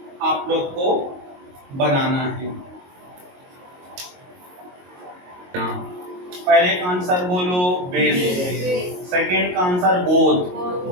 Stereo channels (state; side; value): late; left; 22 ms